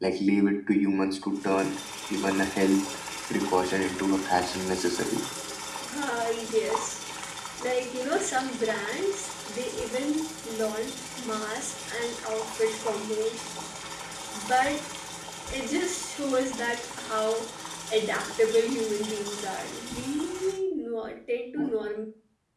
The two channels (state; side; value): identical; both; correlation 1.00